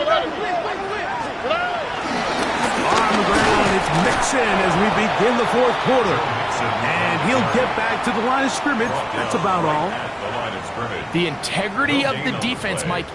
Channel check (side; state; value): both; identical; correlation 1.00